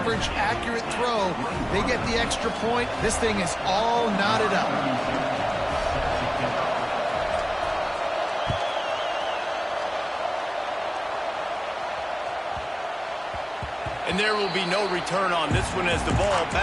accurate throw. They get the extra point. This thing is all knotted up. And there will be no return on this one as the ball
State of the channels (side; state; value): both; identical; correlation 1.00